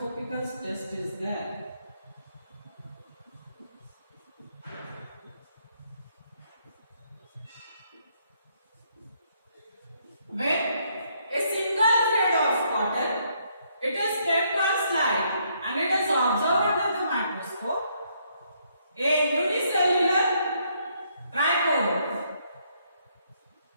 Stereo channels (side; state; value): both; inverted; correlation -0.72